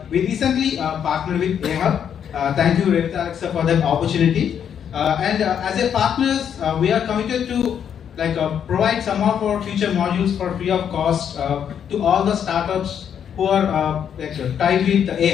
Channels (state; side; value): quieter; right; 8.5 dB